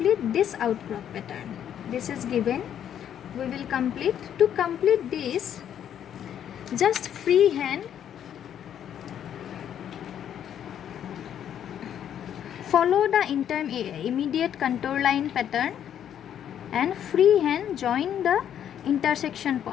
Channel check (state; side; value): quieter; right; 9.7 dB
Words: this outcrop pattern. this is given. We will complete. To complete this, just freehand follow the immediate contour line pattern and freehand join the intersection